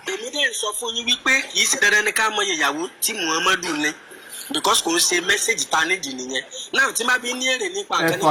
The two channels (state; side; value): identical; both; correlation 1.00